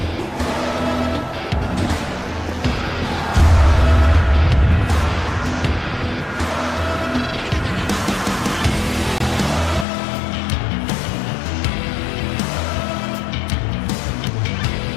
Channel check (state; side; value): drops out; right; at 9.9 s